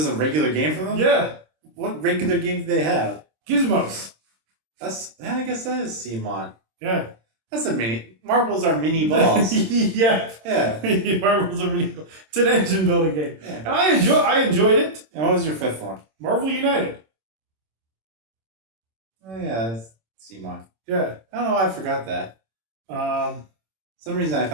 a regular game for them? Yeah. What regular game do they have? Gizmos. I guess that is CMON. Yeah. That's a mini. Marbles are mini balls. Yeah. Yeah. Marbles are really cool. It's an engine building game. Yeah. And I enjoyed it. And what was your 5th one? Marvel United. Oh yeah, that's CMON. Yeah. I don't know why I forgot that. Some reason I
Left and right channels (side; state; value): left; late; 26 ms